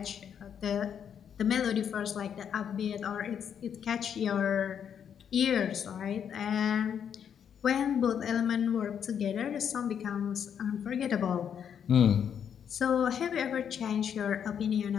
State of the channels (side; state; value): right; quieter; 8.2 dB